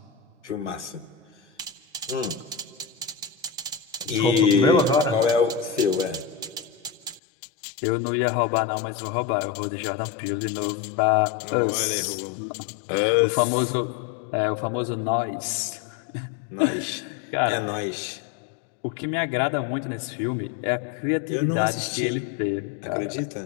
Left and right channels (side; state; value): right; drops out; at 7.2 s